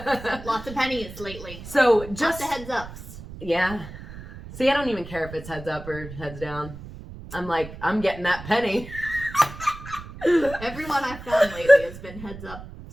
Lots of pennies lately. So just lots of heads ups. Yeah. See, I don't even care if it's heads up or heads down. I'm like, I'm getting that penny. Everyone I've found lately has been heads up.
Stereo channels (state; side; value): noise; right; rumble, 13 dB below the sound